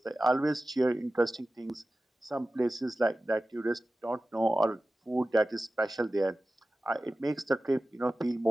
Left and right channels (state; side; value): normal; both; correlation 0.96